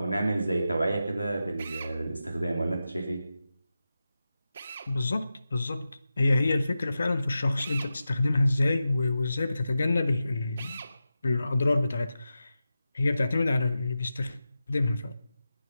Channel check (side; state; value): both; inverted; correlation -0.92